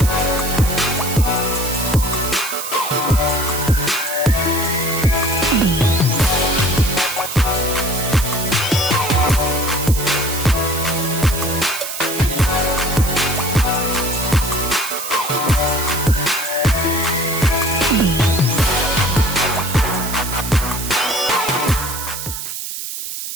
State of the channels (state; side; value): noise; right; hiss, 6 dB below the sound